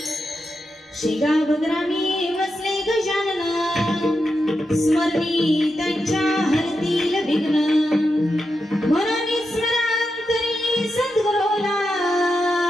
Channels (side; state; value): both; normal; correlation 0.87